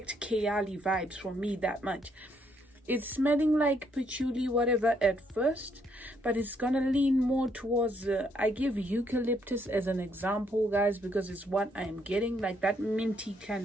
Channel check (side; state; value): both; normal; correlation 0.72